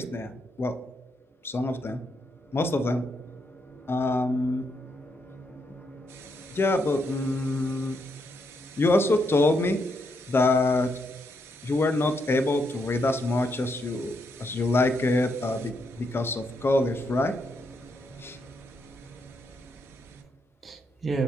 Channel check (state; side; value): normal; both; correlation 0.79